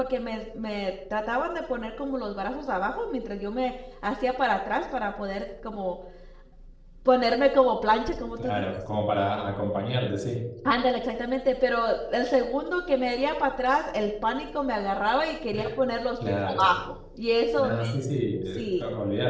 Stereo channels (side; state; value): both; identical; correlation 1.00